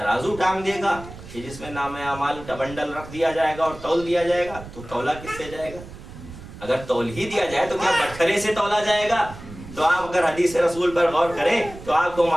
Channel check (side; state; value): right; noise; rumble, 15 dB below the sound